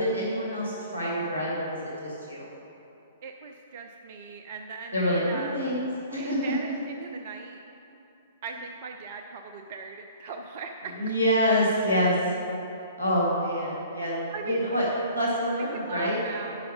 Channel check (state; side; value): inverted; both; correlation -0.49